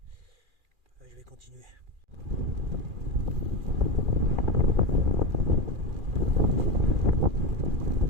Là, je vais continuer.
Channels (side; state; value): left; late; 2.4 ms